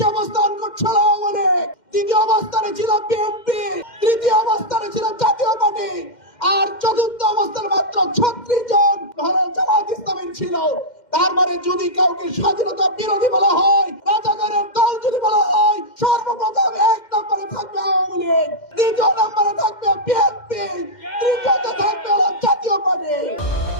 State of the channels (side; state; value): right; late; 2.1 ms